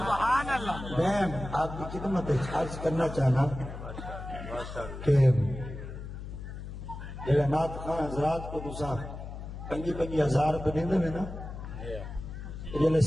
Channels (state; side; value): noise; left; hum, 9 dB below the sound